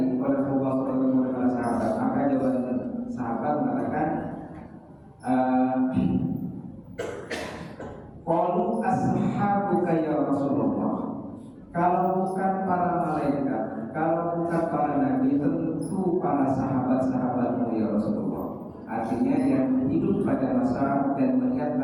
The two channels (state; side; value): identical; both; correlation 1.00